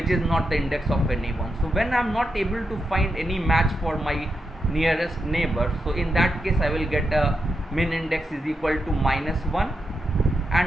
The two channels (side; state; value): both; normal; correlation 0.85